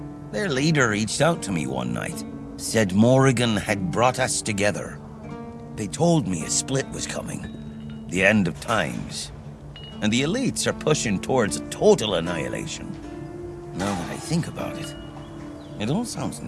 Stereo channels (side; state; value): both; identical; correlation 1.00